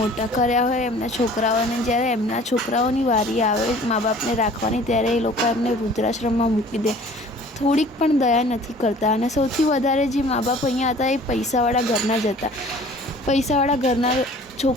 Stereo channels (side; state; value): both; normal; correlation 0.49